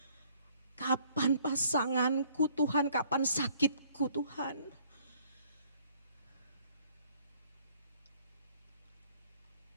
kapan pasanganku Tuhan, kapan sakitku Tuhan.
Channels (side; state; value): both; inverted; correlation -0.60